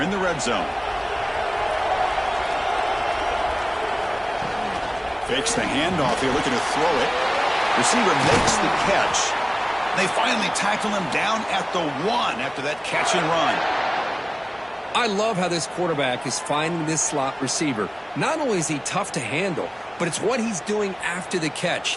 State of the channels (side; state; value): both; identical; correlation 1.00